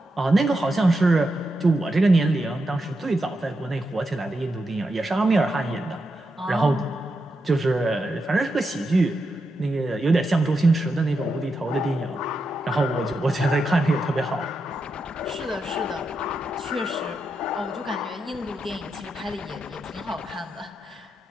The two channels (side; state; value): both; normal; correlation 0.86